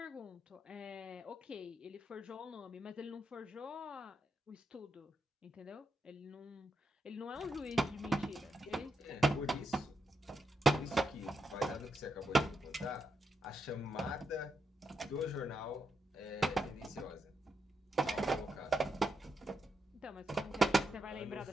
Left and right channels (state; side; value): normal; both; correlation 0.83